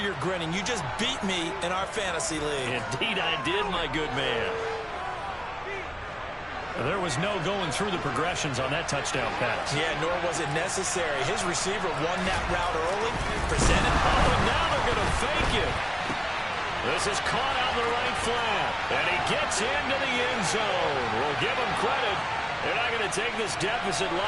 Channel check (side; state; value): both; identical; correlation 1.00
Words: grinning. You just beat me in our fantasy league. Indeed I did, my good man. There was no going through the progressions on that touchdown pass. Yeah, nor was it necessary. His receiver won that route early, presented. Oh, and now they're going to fake it. This is caught on the right flat, and he gets into the end zone. We'll give him credit. They're not going to take this deficit